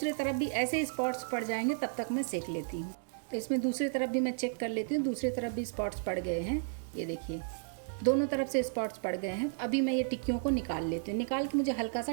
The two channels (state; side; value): silent; left; digital silence